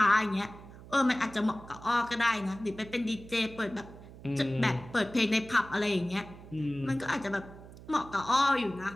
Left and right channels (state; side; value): noise; right; hum, 17 dB below the sound